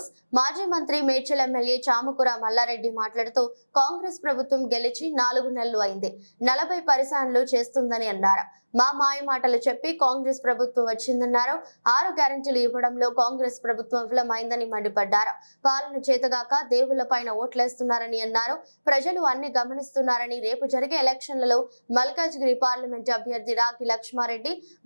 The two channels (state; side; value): inverted; both; correlation -1.00